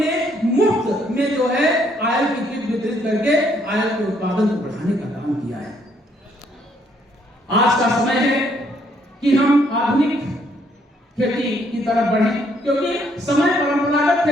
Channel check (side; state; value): both; normal; correlation 0.69